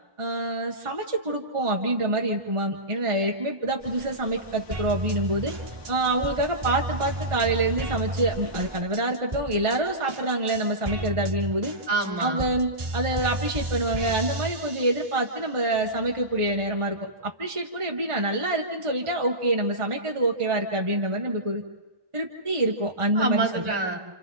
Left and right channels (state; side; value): late; left; 1.5 ms